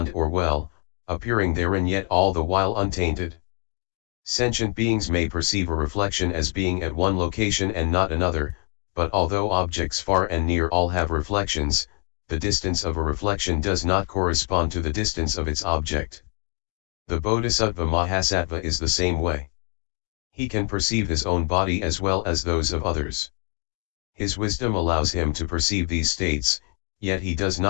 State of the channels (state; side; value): quieter; right; 39.8 dB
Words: or well, appearing therein yet all the while untainted. Sentient beings may perceive a reflection as being at one location and not another, but although objects far and near all have reflections, the distance of a reflection does not correspond to the distance of its object. The Bodhisattva Mahasattva is the same way. He can perceive his own body as well as those of others. His wisdom allows him to perceive these states, yet he does